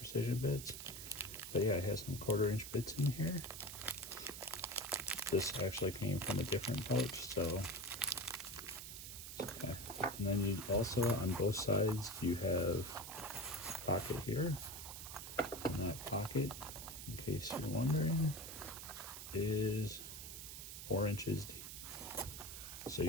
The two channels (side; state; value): right; noise; hiss, 9 dB below the sound